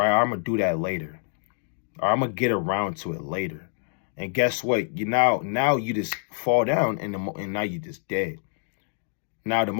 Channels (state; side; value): silent; right; digital silence